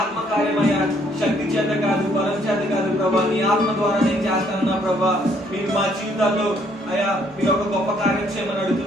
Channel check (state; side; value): normal; both; correlation 0.66